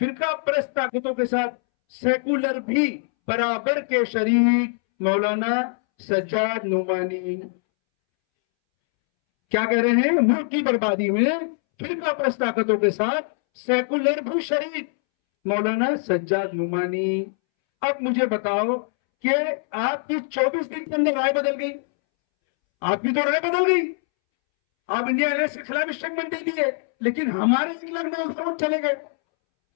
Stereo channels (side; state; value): right; silent; 63 dB below the other